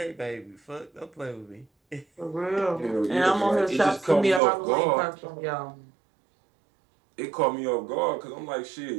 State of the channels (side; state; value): left; drops out; at 4.4 s